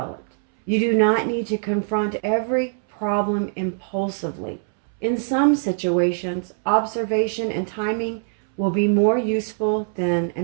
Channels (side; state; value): left; silent; 64 dB below the other